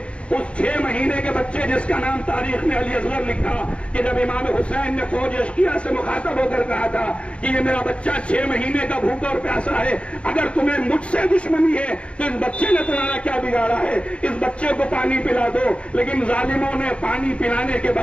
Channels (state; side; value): late; right; 0.060 ms